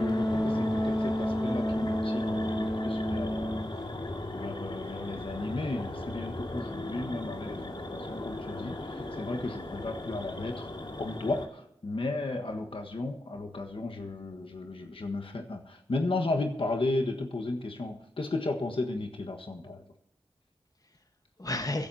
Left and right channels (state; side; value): normal; both; correlation 0.86